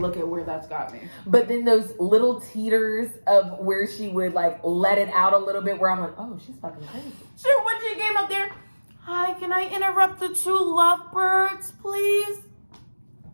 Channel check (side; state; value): both; inverted; correlation -1.00